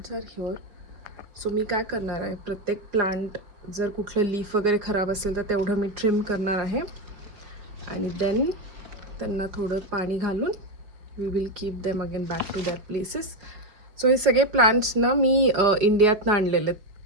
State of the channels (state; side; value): late; left; 4.8 ms